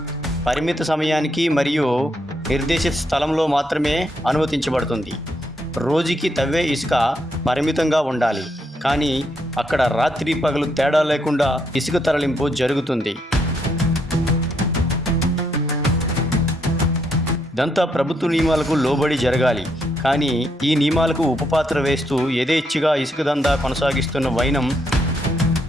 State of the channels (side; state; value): both; normal; correlation 0.76